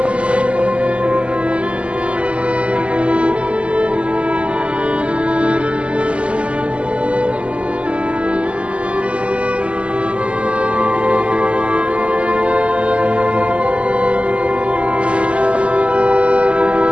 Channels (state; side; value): late; left; 0.057 ms